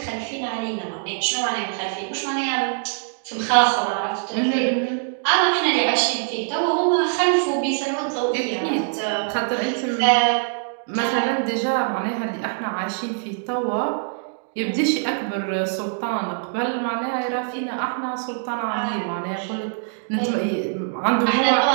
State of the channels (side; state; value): left; silent; digital silence